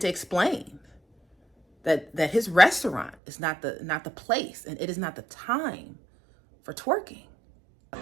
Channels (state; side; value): drops out; left; at 3.2 s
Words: to explain that his restaurant is not the place, and it is not the time for twerking.